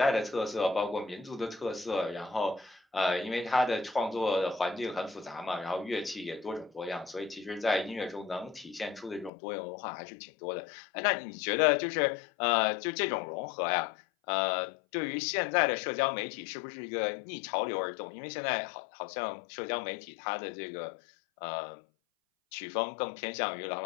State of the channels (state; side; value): drops out; right; at 9.3 s